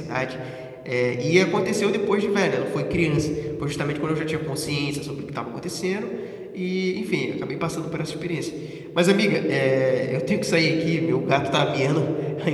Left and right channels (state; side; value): identical; both; correlation 1.00